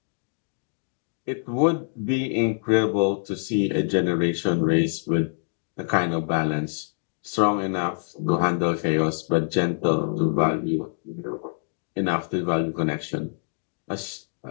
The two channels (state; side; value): silent; right; digital silence